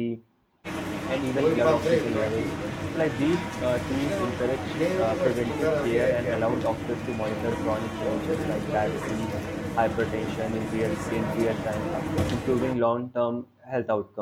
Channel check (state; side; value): identical; both; correlation 1.00